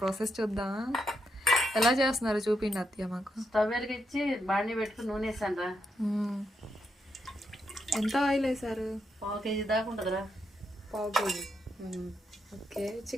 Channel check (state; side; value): normal; both; correlation 0.81